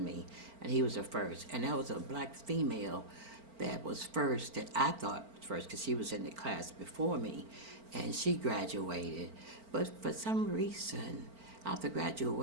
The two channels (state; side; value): late; left; 4.4 ms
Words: me, and he was the first. And that was a black female that was first, that I thought was first because she was in the class before me, and she graduated. But for some reason, after